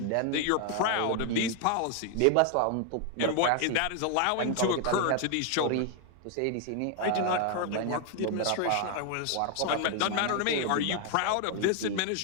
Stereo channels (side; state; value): both; different; correlation 0.00